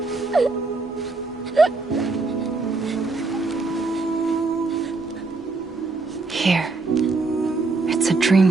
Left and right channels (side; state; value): left; quieter; 3.7 dB